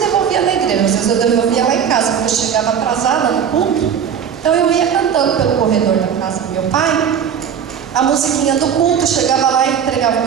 na igreja, às vezes eu devolvia lá em casa, porque eu chegava atrasada no culto. Então eu ia cantando pelo corredor da casa do meu pai a musiquinha do culto, chegava lá e entregava o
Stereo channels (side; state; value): left; quieter; 8.0 dB